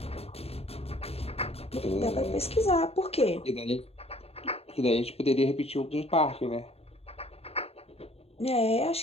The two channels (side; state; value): right; late; 0.29 ms